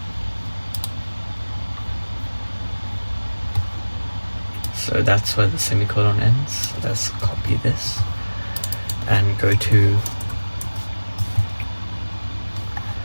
So that's where the semicolon ends. So let's copy this and go to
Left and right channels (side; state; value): both; inverted; correlation -1.00